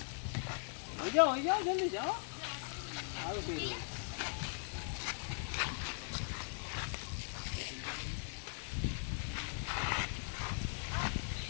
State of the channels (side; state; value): right; silent; 51 dB below the other